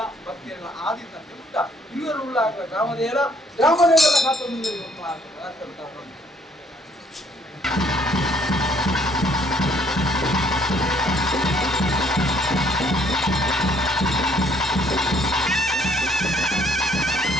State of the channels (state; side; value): normal; both; correlation 0.64